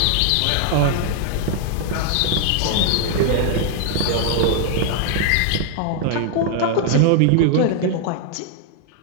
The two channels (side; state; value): both; different; correlation 0.00